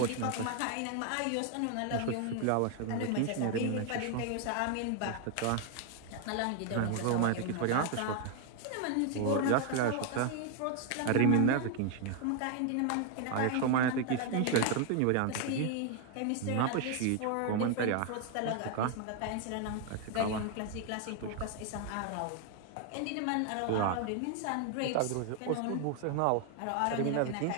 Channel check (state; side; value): different; both; correlation 0.01